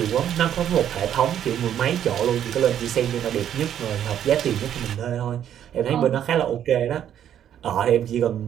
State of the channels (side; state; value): left; quieter; 10.1 dB